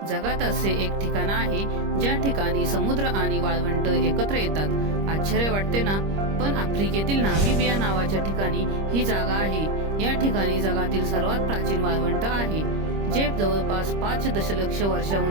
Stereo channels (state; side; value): late; left; 25 ms